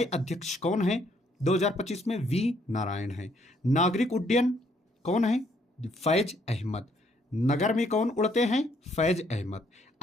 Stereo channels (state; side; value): normal; both; correlation 0.69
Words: अध्यक्ष कौन है 2025 में? वी नारायण है। नागरिक उड्डयन कौन है? फैज अहमद। नगर में कौन उड़ते हैं? Faiz Ahmad.